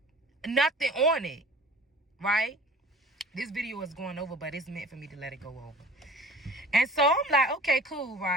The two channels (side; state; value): both; normal; correlation 0.45